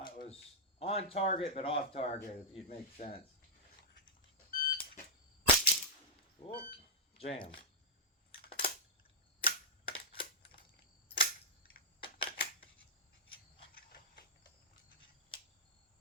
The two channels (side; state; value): both; normal; correlation -0.10